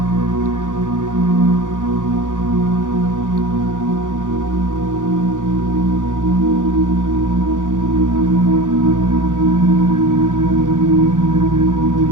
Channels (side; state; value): left; late; 0.88 ms